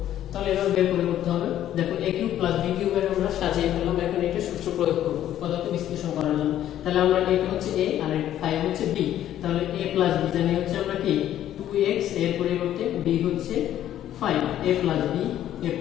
তাহলে এভাবে বের করে করতে হবে। দেখো a কিউব প্লাস b কিউবের আমরা সাজিয়ে ফেললাম, এখন এটা সূত্র প্রয়োগ করব উৎপাদকে বিশ্লেষণ করার জন্য। তাহলে আমরা এটা হচ্ছে a আর 5 হচ্ছে b, তাহলে a প্লাস b জানি হচ্ছে আমরা কি 2x, এর পরিবর্তে b হচ্ছে 5, a plus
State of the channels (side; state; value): right; quieter; 11.9 dB